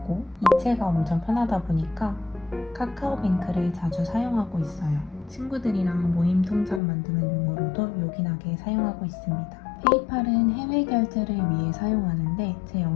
이체가 엄청 편하다 보니까 카카오뱅크를 자주 사용하고 있어요. 친구들이랑 모임 통장 만드는 용으로도 요긴하게 사용하고 있습니다. 페이팔은 해외 결제를 위해 사용하는데 제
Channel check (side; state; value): right; drops out; at 6.8 s